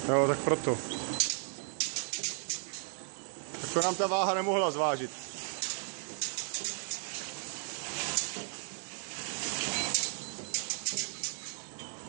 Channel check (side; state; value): left; silent; 55 dB below the other